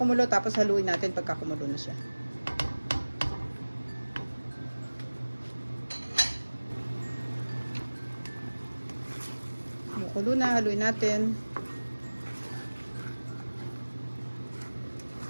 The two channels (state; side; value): inverted; both; correlation -1.00